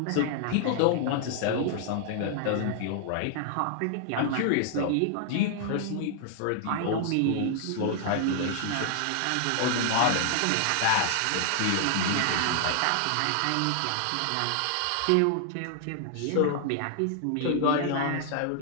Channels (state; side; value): different; both; correlation 0.00